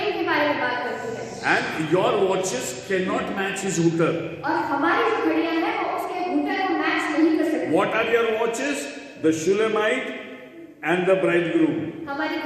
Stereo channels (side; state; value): both; identical; correlation 1.00